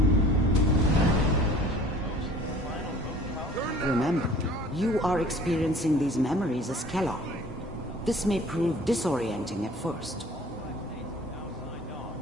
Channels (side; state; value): both; normal; correlation 0.50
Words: Remember, you are experiencing these memories as Kellogg. This may prove disorienting at first.